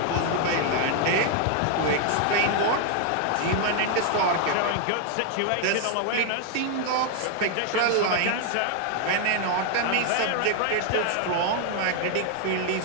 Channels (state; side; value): different; both; correlation 0.00